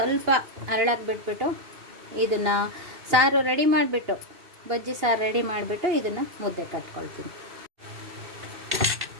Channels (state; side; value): late; left; 2.6 ms